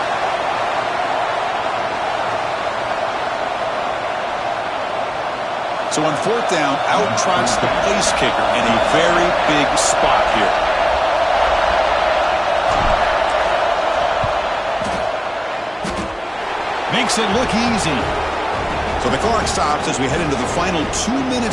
So on fourth down, out trots the place kicker in a very big spot here. Makes it look easy. So the clock stops as we head into the final 2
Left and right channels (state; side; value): identical; both; correlation 1.00